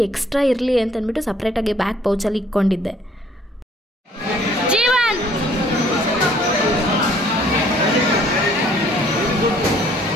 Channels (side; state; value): both; normal; correlation 0.60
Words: ಎಕ್ಸ್ಟ್ರಾ ಇರಲಿ ಅಂತಂದ್ಬಿಟ್ಟು ಸಪ್ರೇಟಾಗಿ ಬ್ಯಾಕ್ ಪೌಚಲ್ಲಿ ಇಟ್ಕೊಂಡಿದ್ದೆ. ಜೀವನ್